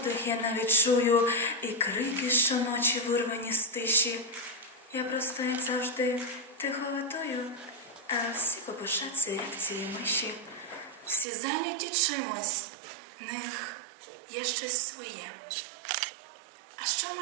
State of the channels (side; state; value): left; drops out; at 11.2 s